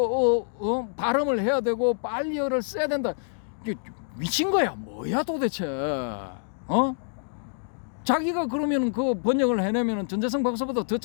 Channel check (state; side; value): silent; right; digital silence